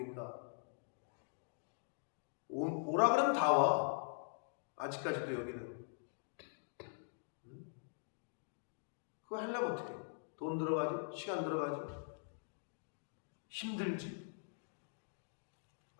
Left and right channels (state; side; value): silent; right; digital silence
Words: 오라 그러면 다 와. 아직까지도 여기는. 그거 하려면 어떻게? 돈 들어가죠? 시간 들어가죠? 힘들지.